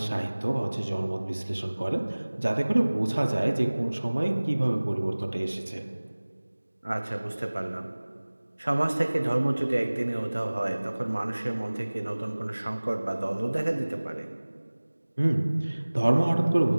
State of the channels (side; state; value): both; inverted; correlation -1.00